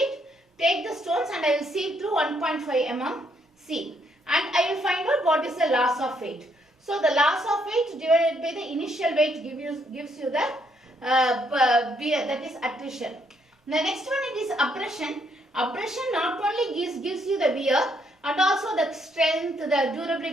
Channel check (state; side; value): normal; both; correlation 0.72